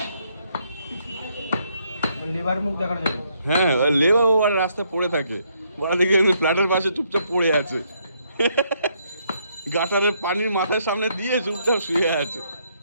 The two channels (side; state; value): both; inverted; correlation -0.73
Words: লিভার মুখ দেখানো যাবে। হ্যাঁ, লেবা আর রাস্তায় পড়ে থাকে, ওরা দেখে ফ্ল্যাটের পাশে চুপচাপ পড়ে আছে, গাটারের পানির মাথার সামনে দিয়ে চুপচাপ শুয়ে আছে।